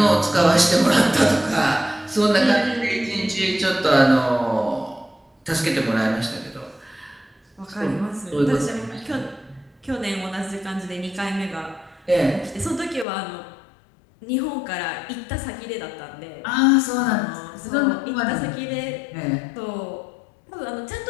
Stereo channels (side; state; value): right; drops out; at 13.1 s